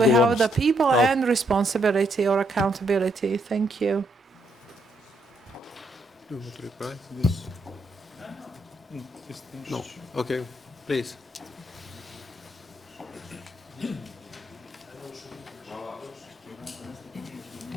have the people and responsibility or accountability. Thank you. Do you want to reply to this? No. Okay, please.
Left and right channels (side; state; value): both; normal; correlation 0.75